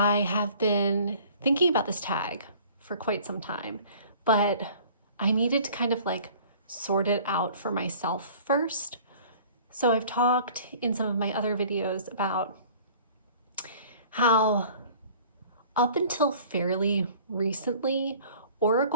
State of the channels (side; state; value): both; inverted; correlation -0.49